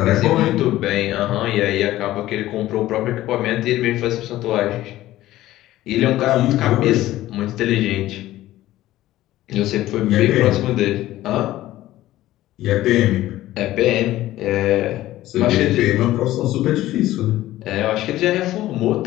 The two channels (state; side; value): quieter; right; 15.2 dB